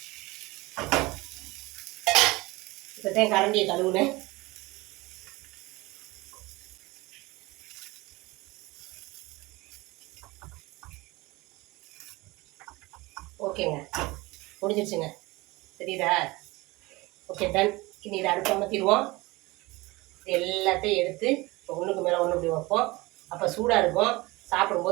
இப்போதான் கரண்டியை கழுவுனேன். ஓகேங்க, முடிஞ்சிருச்சுங்க, தெரியுதா? Okay done. இனி இதை அடுப்பு அமர்த்திடுவோம். எல்லாத்தையும் எடுத்து ஒன்றுக்கு மேலே ஒன்று இப்படி வைப்போம். அப்போ சூடாக இருக்கும்,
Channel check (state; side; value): quieter; left; 22.0 dB